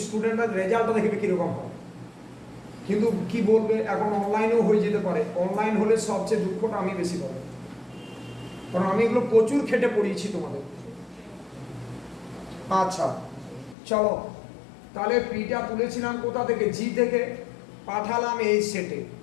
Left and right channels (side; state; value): right; drops out; at 13.8 s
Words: স্টুডেন্টরা রেজাল্টটা দেখবে কীরকম হয়, কিন্তু কি বলবে, এখন অনলাইনেও হয়ে যেতে পারে। অনলাইন হলে সবচেয়ে দুঃখটা আমি বেশি পাবো, কারণ আমি এগুলো প্রচুর খেটে পড়িয়েছি তোমাদের। আচ্ছা চলো, তাহলে পিটা তুলেছিলাম কোথা থেকে, জি থেকে, পাঠালাম এই সেটে।